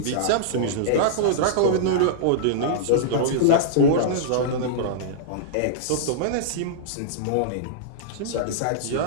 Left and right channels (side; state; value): both; different; correlation -0.02